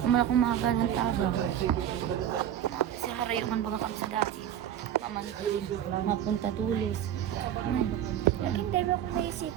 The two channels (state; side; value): quieter; left; 10.4 dB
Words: Naman akong mahagal ng tabang. Kasi harayuman baga kami sa dati. Mapunta tulis. Hindi ba kung